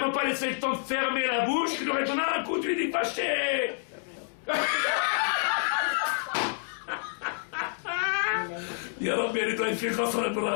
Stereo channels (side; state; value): right; silent; digital silence